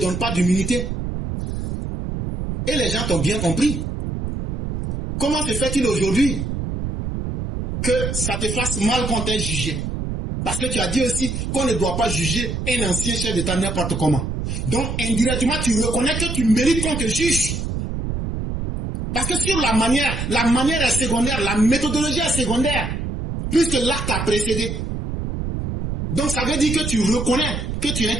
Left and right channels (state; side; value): noise; right; rumble, 4 dB below the sound